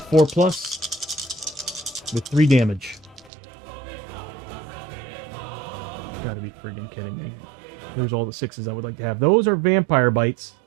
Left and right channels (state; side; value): drops out; left; at 3.3 s